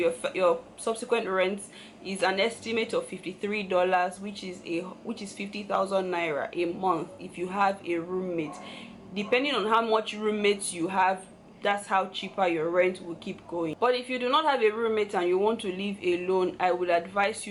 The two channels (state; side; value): identical; both; correlation 1.00